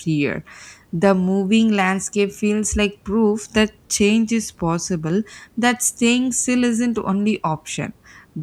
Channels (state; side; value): identical; both; correlation 1.00